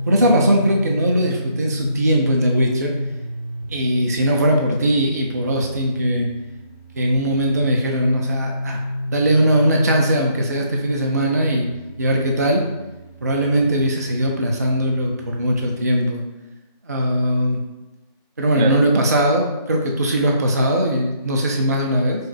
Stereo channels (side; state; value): both; inverted; correlation -0.69